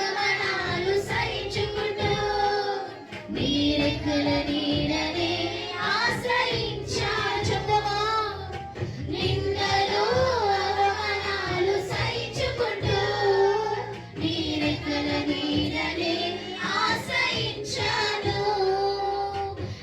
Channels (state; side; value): identical; both; correlation 1.00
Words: సహించుకుంటూ నీరెక్కల నీడనే ఆశ్రయించాను. చెప్తావా? నిందలు అవమానాలు సహించుకుంటూ నీరెక్కల నీడనే ఆశ్రయించాను.